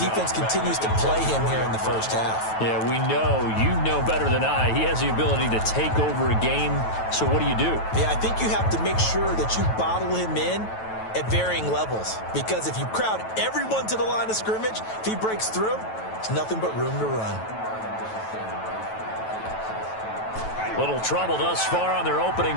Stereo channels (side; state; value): right; late; 9.2 ms